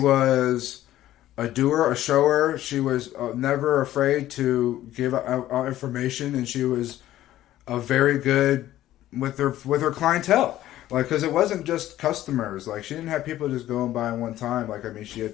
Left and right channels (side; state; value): right; quieter; 13.8 dB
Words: a doer, a shower. She was never afraid to give out information, and she was a very good with her clientele. Like, because it wasn't just customers. Like, she didn't have people just going by one time. Like, I mean, she